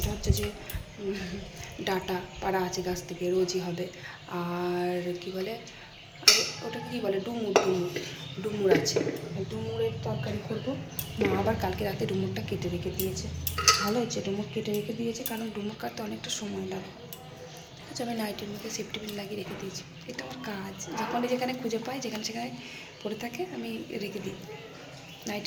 হচ্ছে যে ডাটা পাড়া আছে গাছ থেকে, রোজই হবে। আর কি বলে, ওটাকে কী বলে, ডুমুর ডুমুর ডুমুর আছে, ডুমুরের তরকারি করবো। মা আবার কালকে রাতে ডুমুরটা কেটে রেখে দিয়েছে। ভালো হচ্ছে, ডুমুর কেটে রেখে দিয়েছে, কারণ ডুমুর কাটতে অনেকটা সময় লাগে। ঠিক আছে, আমি নাইটের মধ্যে সেফটি পিন লাগিয়ে রেখে দিয়েছি। এটা আমার কাজ, যখনই যেখানে খুঁজে পাই, যেখানে সেখানে পড়ে থাকে, আমি রেখে দিই,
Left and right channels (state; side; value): identical; both; correlation 1.00